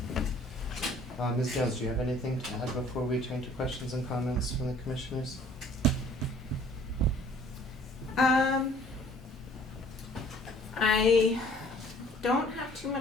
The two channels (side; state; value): both; normal; correlation 0.55